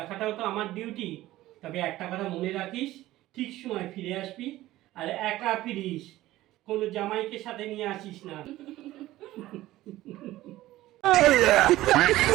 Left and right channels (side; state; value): left; quieter; 16.0 dB